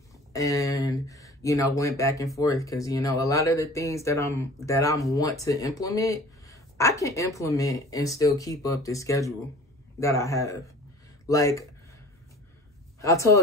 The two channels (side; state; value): both; normal; correlation 0.45